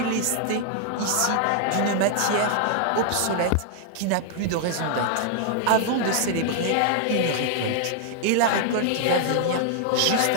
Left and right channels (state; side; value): different; both; correlation 0.00